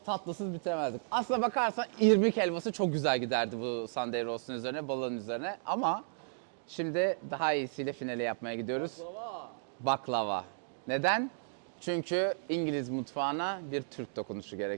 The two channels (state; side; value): silent; left; digital silence